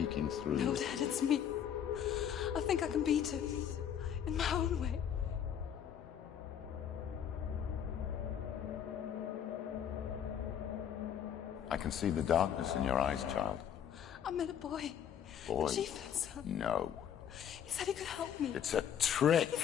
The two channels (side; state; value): right; quieter; 9.0 dB